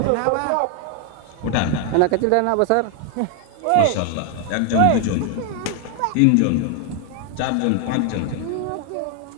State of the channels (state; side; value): different; both; correlation 0.00